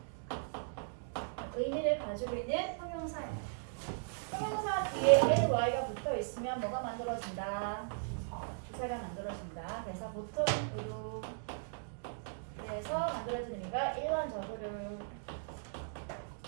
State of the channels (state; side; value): silent; left; digital silence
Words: 의미를 가지고 있는 형용사입니다. 형용사 뒤에 l, y가 붙어 있으면 뭐가 만들어진다? 부사가 만들어진다. 그래서 보통으로 그래서 만들어진 의미가 일반적으로 라는